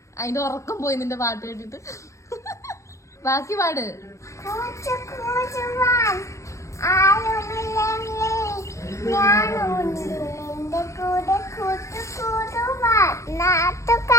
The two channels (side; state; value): right; late; 0.15 ms